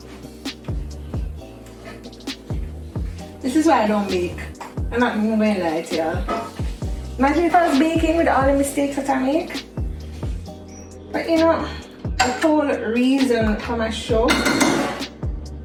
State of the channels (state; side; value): identical; both; correlation 1.00